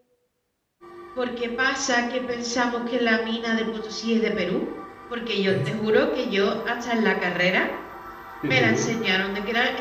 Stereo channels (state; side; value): identical; both; correlation 1.00